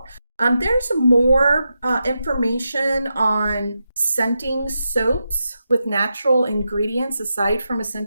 There's more information on scenting soaps with natural ingredients aside from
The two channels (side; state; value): both; inverted; correlation -0.88